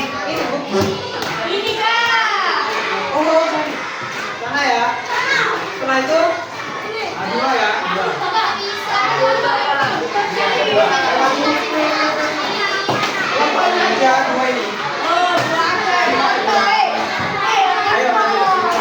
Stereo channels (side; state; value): both; identical; correlation 1.00